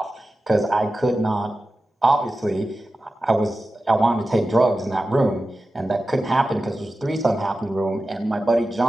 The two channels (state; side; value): normal; both; correlation 0.93